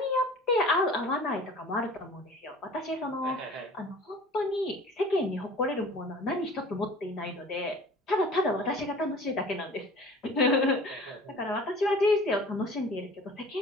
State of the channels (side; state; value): both; normal; correlation 0.44